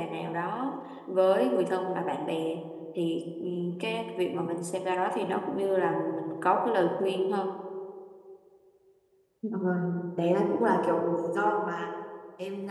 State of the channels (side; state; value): both; identical; correlation 1.00